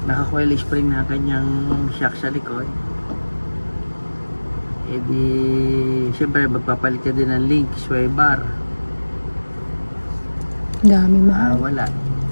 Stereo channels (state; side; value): inverted; both; correlation -1.00